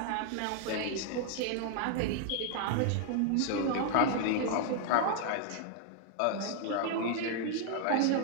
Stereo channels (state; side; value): different; both; correlation 0.00